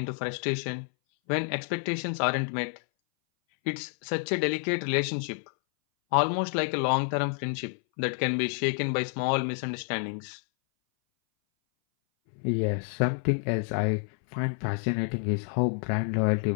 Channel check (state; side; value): silent; right; 59 dB below the other